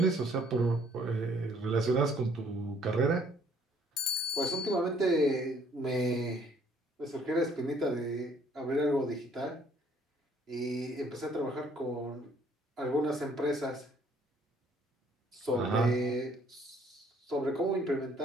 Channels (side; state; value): both; normal; correlation 0.62